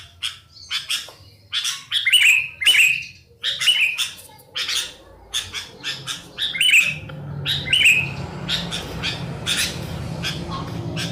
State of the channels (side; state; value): both; identical; correlation 1.00